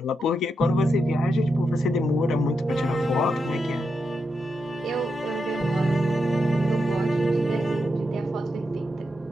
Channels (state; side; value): normal; both; correlation 0.85